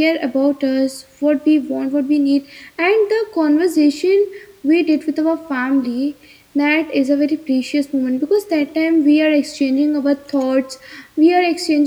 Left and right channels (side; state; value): both; identical; correlation 1.00